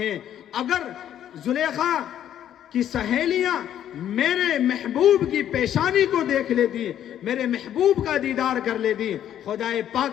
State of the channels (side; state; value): right; quieter; 10.7 dB